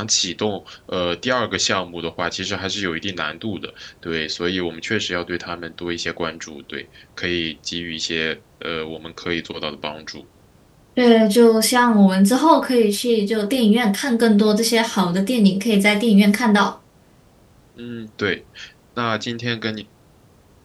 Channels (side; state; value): both; identical; correlation 1.00